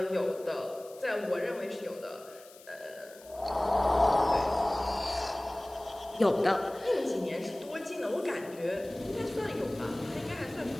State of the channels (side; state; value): left; noise; hiss, 22 dB below the sound